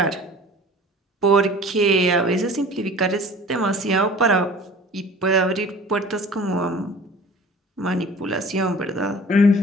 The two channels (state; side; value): normal; both; correlation 0.44